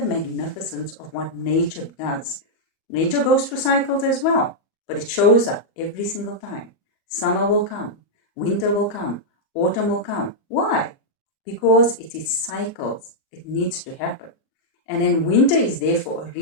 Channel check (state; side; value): late; right; 37 ms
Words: magnificence of what nature does. Nature goes through cycles as well, but it shows up every single time. Summer will come, winter will come, autumn will come. Why? Because it is cycles. It needs to happen. And then winter is there for a